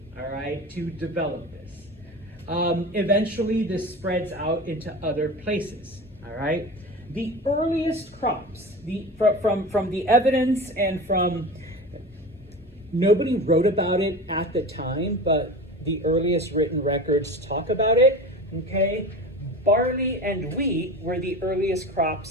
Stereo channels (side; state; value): both; normal; correlation 0.31